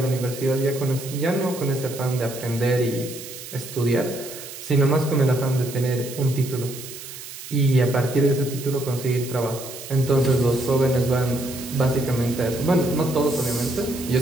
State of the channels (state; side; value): noise; right; hiss, 12 dB below the sound